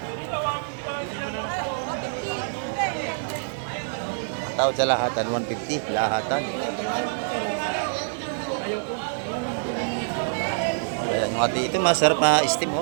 Tawad sa lahatan, 150. Lahatan. Ayan, yung ati ito, masarap na steam,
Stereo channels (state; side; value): silent; left; digital silence